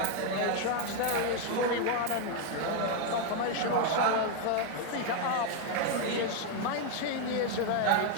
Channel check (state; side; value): different; both; correlation 0.01